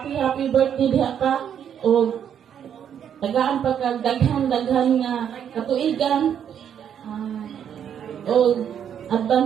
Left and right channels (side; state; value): left; quieter; 8.8 dB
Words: birthday diha ka. O tagaan pagkagdaghan nga katuigan o